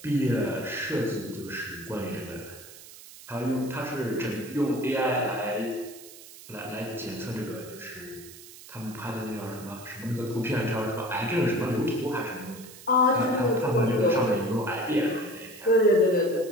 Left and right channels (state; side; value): noise; right; hiss, 17 dB below the sound